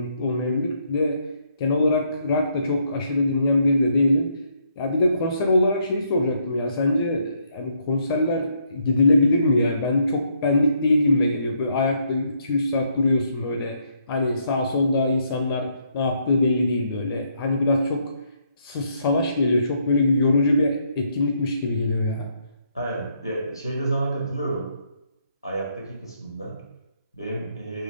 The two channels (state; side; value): inverted; both; correlation -0.73